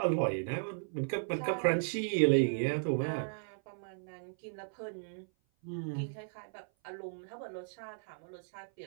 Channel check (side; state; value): left; silent; 54 dB below the other